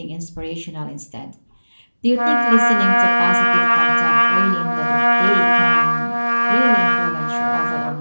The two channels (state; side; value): inverted; both; correlation -1.00